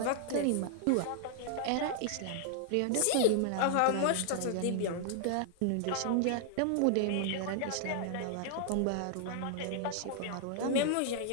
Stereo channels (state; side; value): different; both; correlation -0.01